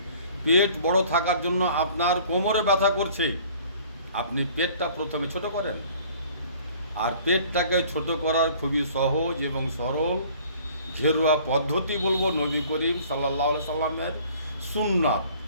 পেট বড় থাকার জন্য আপনার কোমরে ব্যথা করছে। আপনি পেটটা প্রথমে ছোট করেন, আর পেটটাকে ছোট করার খুবই সহজ এবং সরল ঘেরুয়া পদ্ধতি বলবো নবী করিম সাল্লাল্লাহু আলাইহি সাল্লামের সুন্নাত।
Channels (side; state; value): both; inverted; correlation -0.52